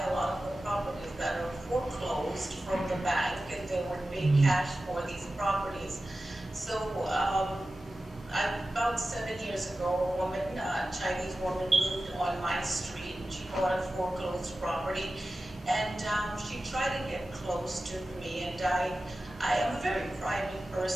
a lot of the properties that are foreclosed from the bank, and they would pay cash for these properties. So about 7 years ago, a woman, a Chinese woman, moved on my street. She bought a foreclosed property, and she tried to get close to me, and I am a very private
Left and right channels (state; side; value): normal; both; correlation 0.94